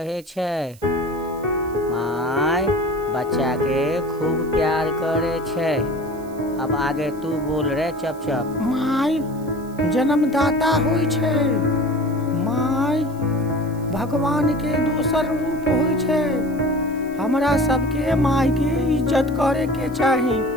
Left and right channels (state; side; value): noise; right; hiss, 24 dB below the sound